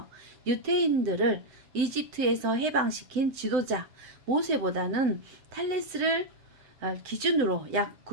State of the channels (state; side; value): late; left; 7.8 ms